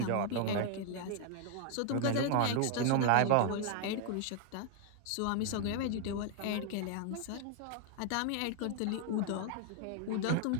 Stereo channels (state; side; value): different; both; correlation 0.00